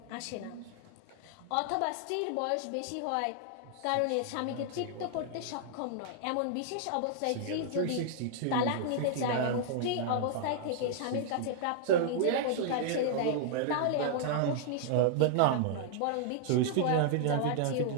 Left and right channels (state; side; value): different; both; correlation -0.01